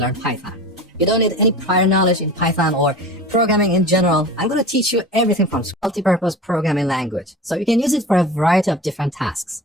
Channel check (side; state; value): both; normal; correlation 0.35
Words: Python. You don't need any prior knowledge in Python or programming in general. I'm going to teach you everything from multi-purpose programming language, so you can use it for a variety of different tasks.